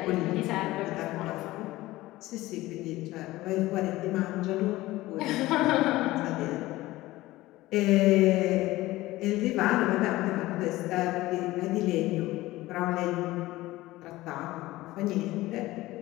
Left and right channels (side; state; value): right; quieter; 17.9 dB